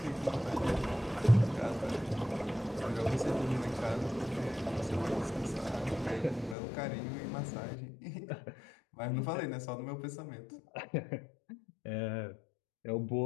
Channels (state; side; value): drops out; right; at 6.6 s